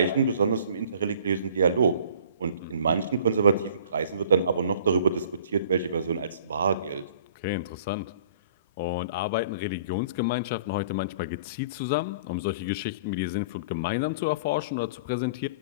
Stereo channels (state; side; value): inverted; both; correlation -0.49